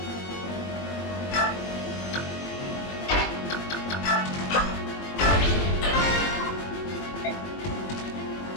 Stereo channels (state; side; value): late; right; 21 ms